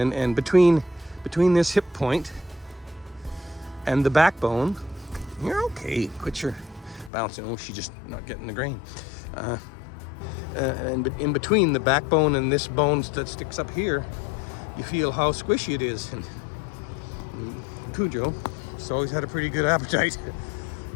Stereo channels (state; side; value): drops out; right; at 7.1 s